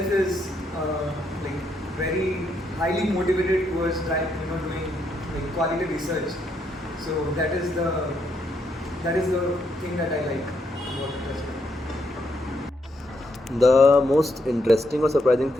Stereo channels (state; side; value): normal; both; correlation 0.77